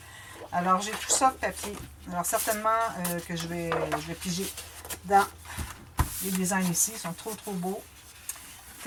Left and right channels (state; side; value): identical; both; correlation 1.00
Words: Alors, j'ai tout ça de papier. Alors, certainement que je vais piger dans les designs ici. Ils sont trop beaux.